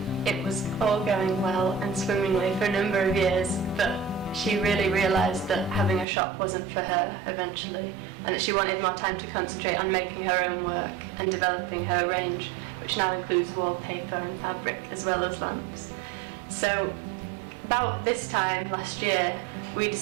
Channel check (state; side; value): drops out; left; at 6.1 s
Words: it was all going well and swimmingly for a number of years, but she really realised that having a shop wasn't for her eventually, and that she wanted more time to concentrate on making her own work and developing her range, which now includes wallpaper and fabric as well as lamps. So about this time last year we